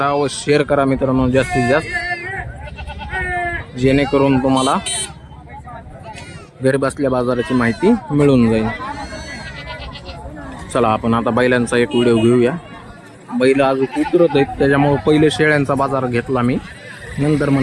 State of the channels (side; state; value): both; identical; correlation 1.00